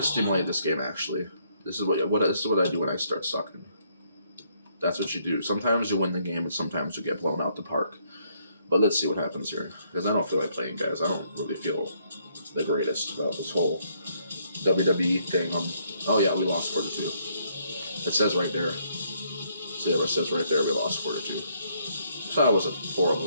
stimulate this game. Actually, this is what I do when I start sucking. That's what you do. Sometimes you win the game, and sometimes you get blown out the park. But let's see what happens here, because I don't feel like playing, guys. I don't really feel the greatest about this whole WWE thing. Oh yeah, we lost 4-2. It says right there. See, it says right there we lost 4-2. So that was a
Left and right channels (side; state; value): both; inverted; correlation -0.70